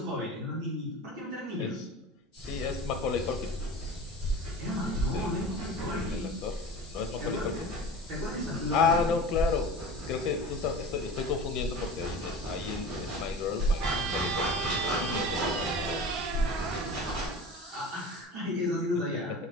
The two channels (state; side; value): normal; both; correlation 0.35